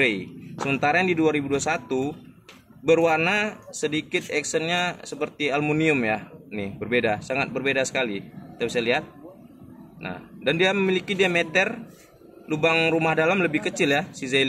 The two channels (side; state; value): both; identical; correlation 1.00